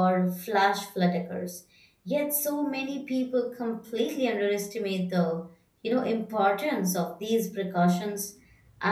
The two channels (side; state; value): both; identical; correlation 1.00